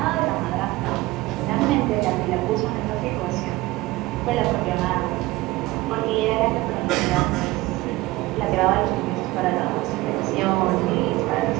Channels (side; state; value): left; quieter; 19.3 dB